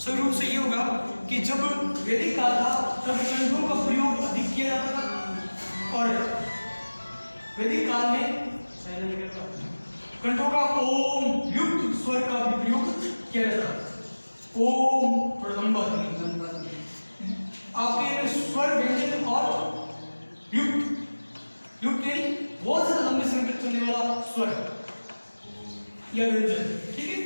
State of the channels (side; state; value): both; inverted; correlation -1.00